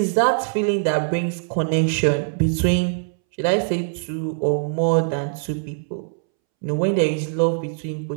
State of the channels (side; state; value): left; silent; 64 dB below the other